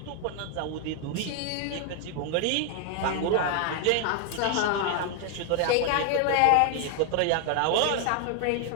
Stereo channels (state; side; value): different; both; correlation 0.00